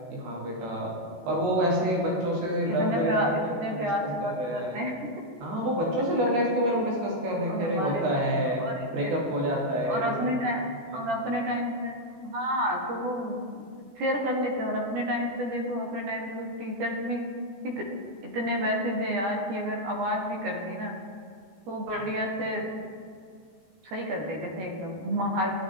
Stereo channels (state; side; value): late; left; 15 ms